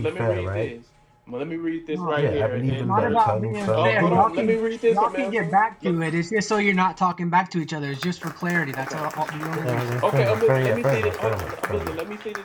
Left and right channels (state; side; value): identical; both; correlation 1.00